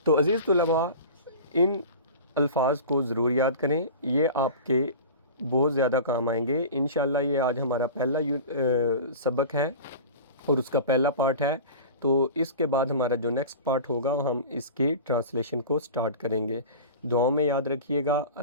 تو عزیز طلباء، ان الفاظ کو ضرور یاد کریں، یہ آپ کے بہت زیادہ کام آئیں گے انشاءاللہ۔ یہ آج ہمارا پہلا سبق ہے اور اس کا پہلا پارٹ ہے، تو اس کے بعد ہمارا جو نیکسٹ پارٹ ہوگا ہم اس کی ٹرانسلیشن کو سٹارٹ کریں گے۔ دعاؤں میں یاد رکھیے گا۔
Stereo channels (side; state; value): both; inverted; correlation -0.35